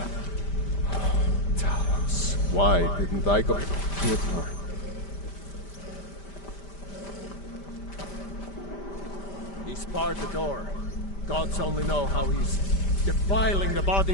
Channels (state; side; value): late; right; 5.1 ms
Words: Talos. Why didn't I go with her? He's barred the door. Gods only know how he's defiling the